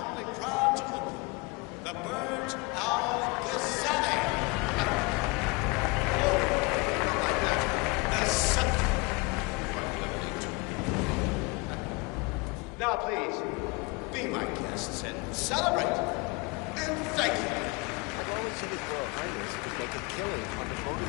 proud to open the Burj Al-Ghazali. Oh, not like that. The scepter. Now, please, be my guests and celebrate. And thank you.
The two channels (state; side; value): quieter; right; 27.7 dB